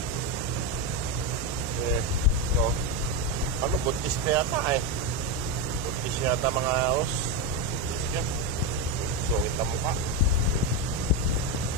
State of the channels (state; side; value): normal; both; correlation 0.10